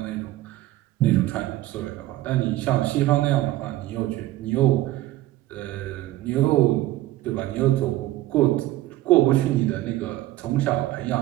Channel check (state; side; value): quieter; left; 15.8 dB